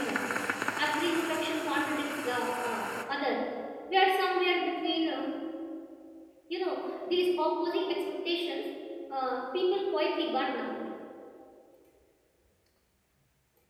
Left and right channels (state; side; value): identical; both; correlation 1.00